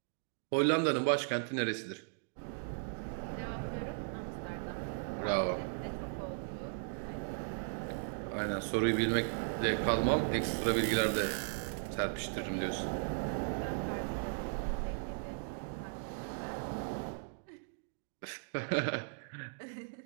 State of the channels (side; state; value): left; silent; digital silence